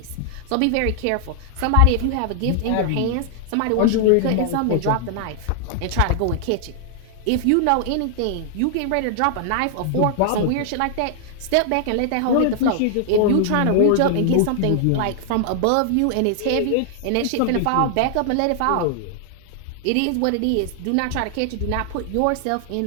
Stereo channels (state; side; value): different; both; correlation 0.00